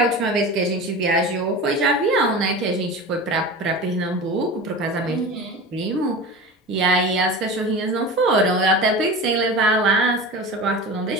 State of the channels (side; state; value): both; normal; correlation 0.31